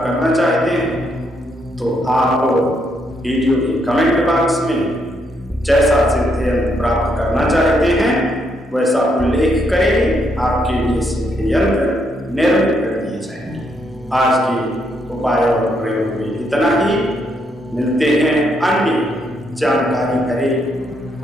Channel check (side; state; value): both; normal; correlation 0.75